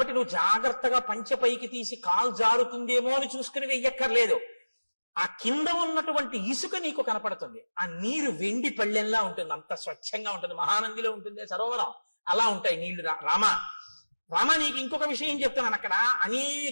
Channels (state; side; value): inverted; both; correlation -1.00